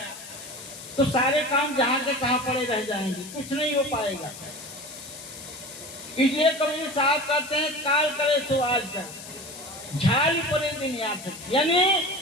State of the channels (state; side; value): noise; left; hiss, 13 dB below the sound